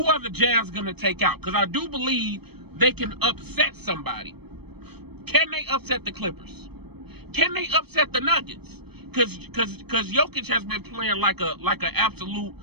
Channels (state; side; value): late; left; 0.97 ms